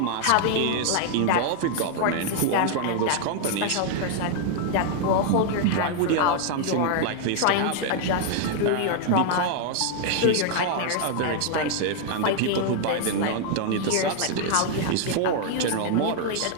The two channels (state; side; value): different; both; correlation 0.00